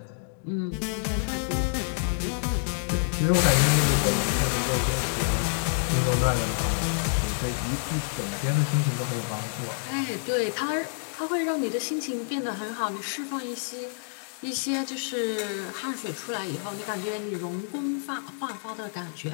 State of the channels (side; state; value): right; silent; digital silence